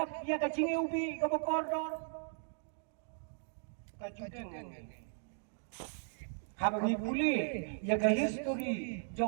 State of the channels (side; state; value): left; silent; digital silence